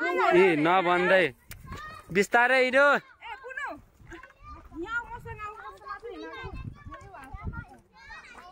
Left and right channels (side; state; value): both; identical; correlation 1.00